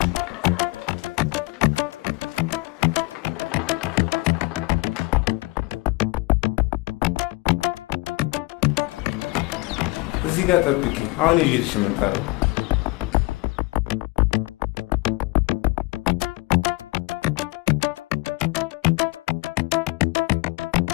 ጋር ጠብቂኝ። አሁን ይዤልሽ እመጣለሁ።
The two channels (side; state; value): right; quieter; 23.9 dB